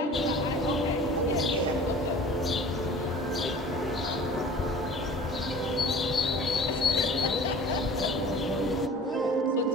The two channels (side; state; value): both; normal; correlation 0.44